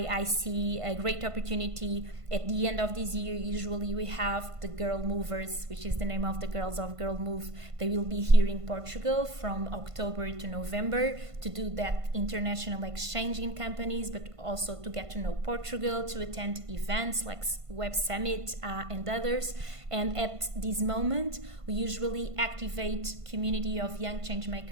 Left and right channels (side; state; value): left; late; 1.5 ms